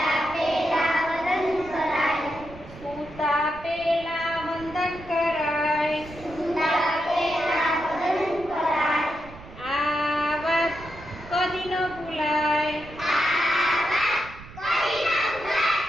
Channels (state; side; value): noise; right; rumble, 17 dB below the sound